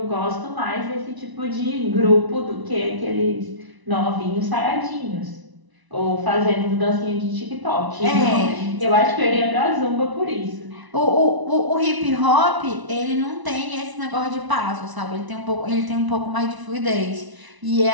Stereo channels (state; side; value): late; left; 1.0 ms